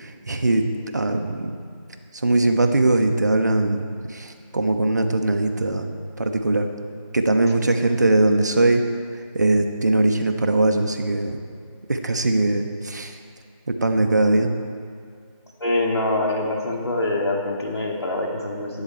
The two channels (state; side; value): inverted; both; correlation -0.83